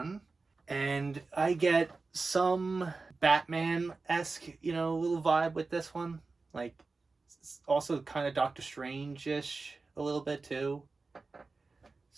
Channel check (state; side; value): quieter; left; 3.9 dB